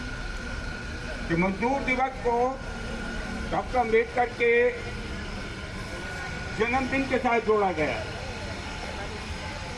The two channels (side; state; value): both; identical; correlation 1.00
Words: कि मजदूर दिवस को डॉक्टर अम्बेडकर के जन्मदिन के साथ जोड़ा गया।